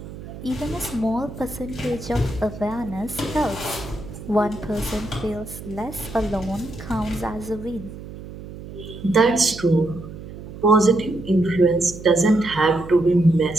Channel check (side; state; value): right; noise; hum, 13 dB below the sound